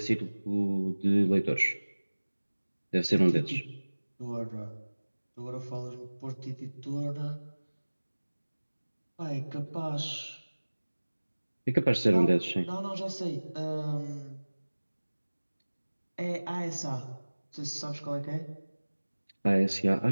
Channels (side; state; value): both; inverted; correlation -1.00